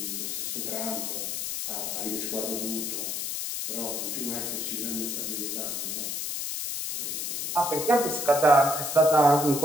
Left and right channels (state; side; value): noise; left; hiss, 3 dB below the sound